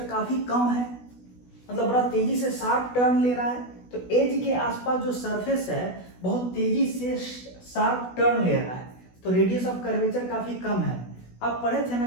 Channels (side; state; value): right; late; 16 ms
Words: काफी कम है, मतलब बड़ा तेजी से शार्प टर्न ले रहा है। तो एज के आसपास जो सरफेस है बहुत तेजी से शार्प टर्न ले रहा है, तो रेडियस ऑफ कर्वेचर काफी कम है। आप पढ़े थे ना